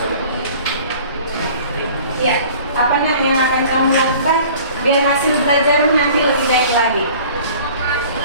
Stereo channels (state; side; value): inverted; both; correlation -0.47